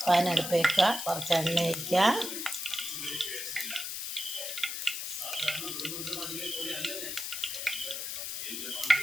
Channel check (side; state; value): left; noise; hiss, 4 dB below the sound